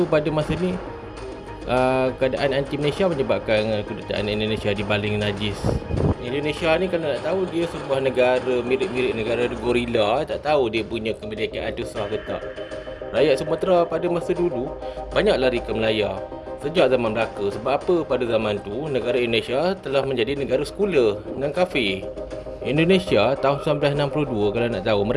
pada masa ni keadaan anti Malaysia menyebabkan kedutaan Indonesia dibaling najis. Indonesia ni kalau nak tahu dia sebuah negara mirip-mirip negara gorila, tak tahu dia punya kemerdekaan ada sah ke tak. Rakyat Sumatera pada masa dulu banyak lari ke Melaya sejak zaman Melaka. Sebab apa? Pada zaman tu negara Indonesia telah menjadi negara sekular dan kafir. Indonesia tahun 1962 kalau nak tahu,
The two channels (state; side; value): identical; both; correlation 1.00